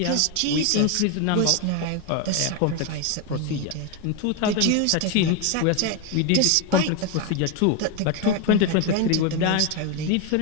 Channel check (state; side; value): different; both; correlation 0.02